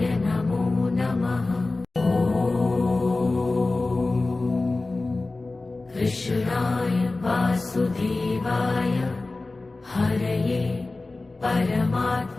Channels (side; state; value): right; quieter; 3.3 dB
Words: नमो नमः। कृष्णाय वासुदेवाय हरये